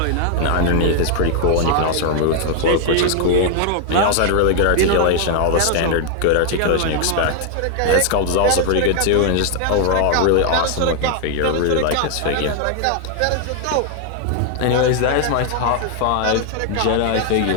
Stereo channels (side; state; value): both; different; correlation 0.00